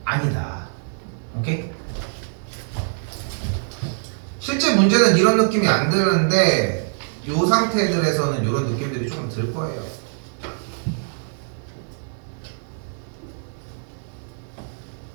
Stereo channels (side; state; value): left; silent; digital silence